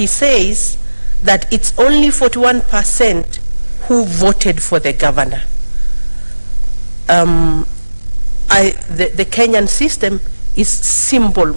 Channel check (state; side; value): inverted; both; correlation -1.00